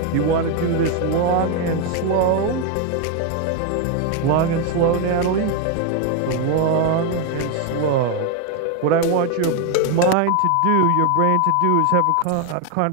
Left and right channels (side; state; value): both; different; correlation 0.01